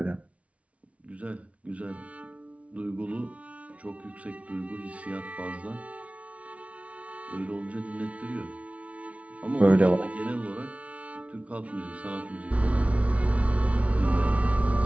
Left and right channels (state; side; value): late; left; 0.064 ms